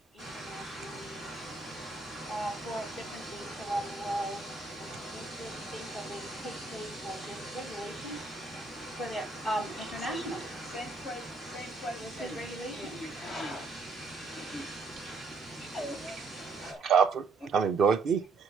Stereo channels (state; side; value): quieter; left; 3.9 dB